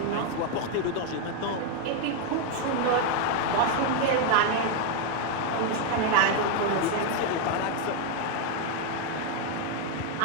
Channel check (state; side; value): different; both; correlation 0.01